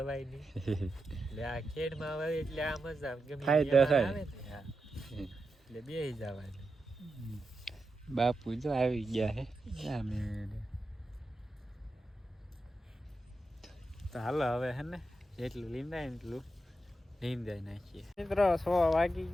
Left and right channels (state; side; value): normal; both; correlation 0.88